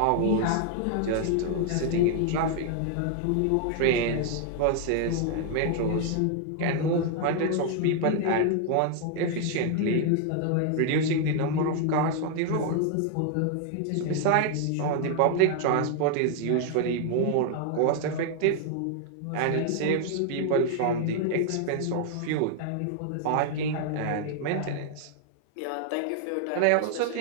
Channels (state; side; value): different; both; correlation 0.00